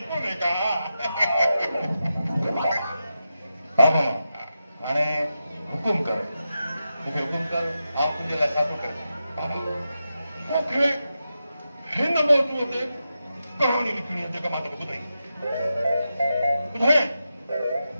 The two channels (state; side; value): inverted; both; correlation -0.89